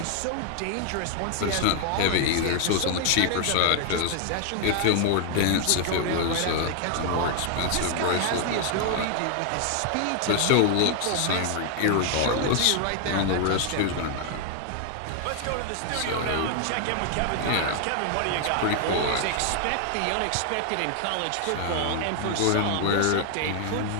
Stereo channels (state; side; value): different; both; correlation 0.00